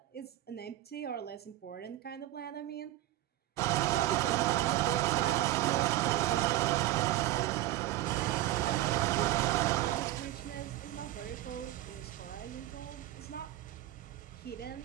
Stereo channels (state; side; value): quieter; left; 14.8 dB